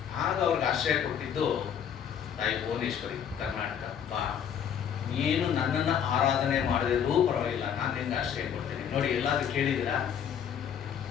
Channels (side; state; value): right; quieter; 8.5 dB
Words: ಆಗ ಅವ್ರಿಗೆ ಆಶ್ರಯ ಕೊಟ್ಟಿದ್ದು ತಾಯಿ ಭುವನೇಶ್ವರಿ, ಕರ್ನಾಟಕ. ಬಾ, ನೀನು ನನ್ನನ್ನು ಆರಾಧನೆ ಮಾಡದಿದ್ರೂ ಪರವಾಗಿಲ್ಲ, ನಾನು ನಿಂಗೆ ಆಶ್ರಯ ಕೊಡ್ತೇನೆ. ನೋಡಿ, ಎಲ್ಲಾದ್ರೂ ಕೇಳಿದಿರಾ